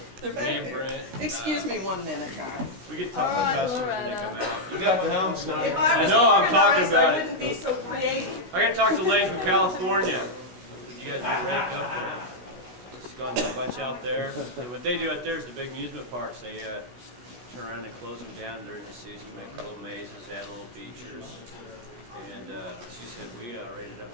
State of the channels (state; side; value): late; left; 16 ms